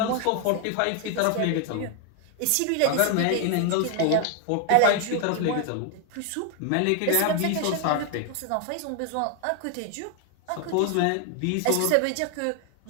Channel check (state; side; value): different; both; correlation 0.00